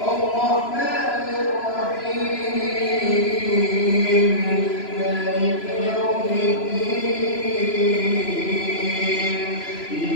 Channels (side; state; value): right; late; 3.0 ms